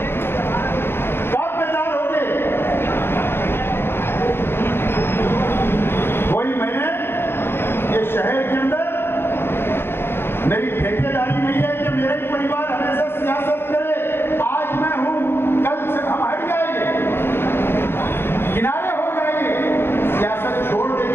कब बेदार होगे? कोई मैंने ये शहर के अंदर मेरी ठेकेदारी नहीं है कि मेरा ही परिवार हमेशा सियासत करे। आज मैं हूं, कल से हम हट जाएंगे, किनारे हो जाएंगे, सियासत छोड़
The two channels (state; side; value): late; right; 0.11 ms